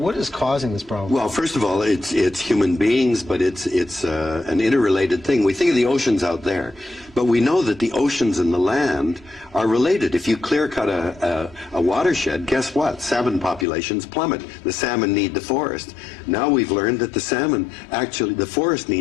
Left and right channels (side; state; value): right; drops out; at 13.7 s